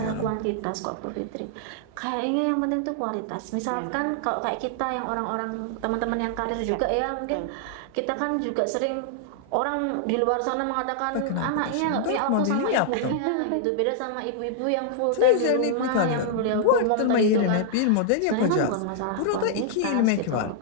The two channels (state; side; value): different; both; correlation -0.01